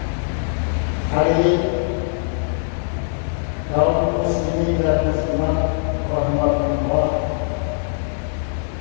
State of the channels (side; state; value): right; silent; digital silence